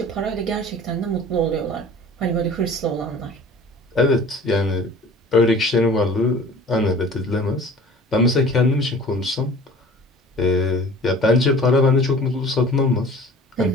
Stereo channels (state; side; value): normal; both; correlation 0.45